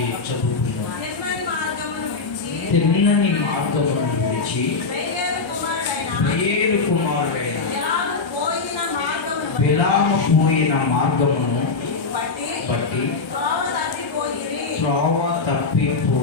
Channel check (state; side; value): quieter; right; 4.3 dB